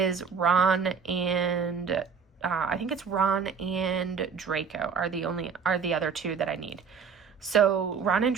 Ron and Draco are the other 2 that I need. So Ron and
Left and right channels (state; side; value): quieter; left; 6.1 dB